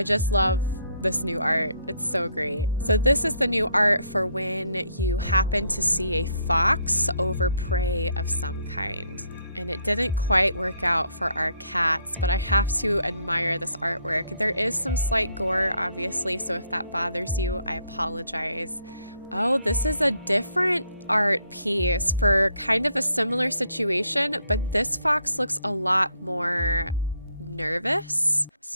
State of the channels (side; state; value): both; inverted; correlation -0.71